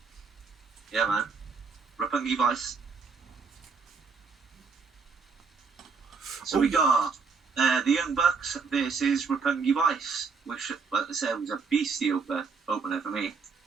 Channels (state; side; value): quieter; left; 5.1 dB